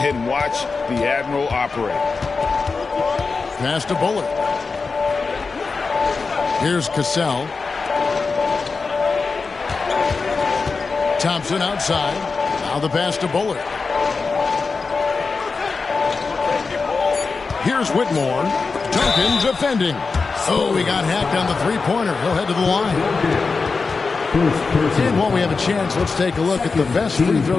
watch the Admiral operate. Pass to Bullard. Here's Cassell. Thompson outside. Now the pass to Bullard. Here's Whitmore. Duncan defending. Oh, he got hacked on the three-pointer. He'll head to the line. And while we have a chance, let's take a look at the best free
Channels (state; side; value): quieter; right; 4.5 dB